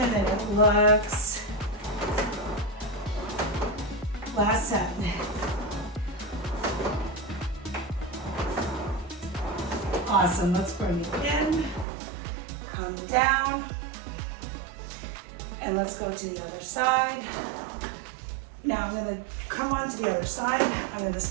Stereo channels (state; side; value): drops out; left; at 11.9 s